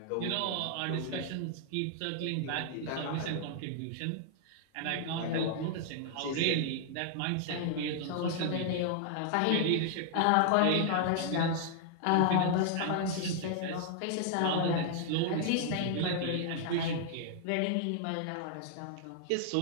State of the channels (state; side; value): different; both; correlation 0.00